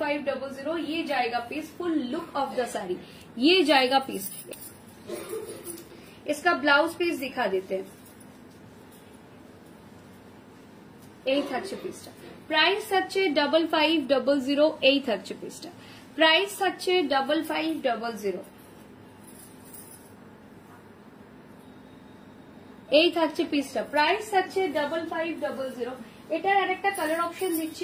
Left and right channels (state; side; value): identical; both; correlation 1.00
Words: ये जाएगा piece, full look of the sari, ये जाएगा पीस। इसका ब्लाउज पीस दिखा देते हैं। এই থাকছে পিসটা, প্রাইস থাকছে 5500। এই থাকছে পিসটা, প্রাইস থাকছে 5500। এই থাকছে পিসটা, প্রাইস থাকছে 5500। এটার আরেকটা কালার অপশন